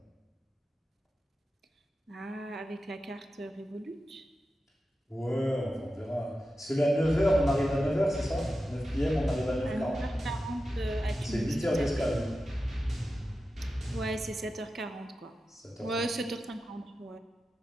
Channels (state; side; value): normal; both; correlation 0.92